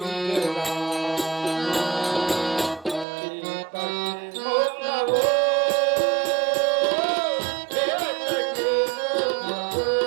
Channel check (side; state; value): left; drops out; at 3.1 s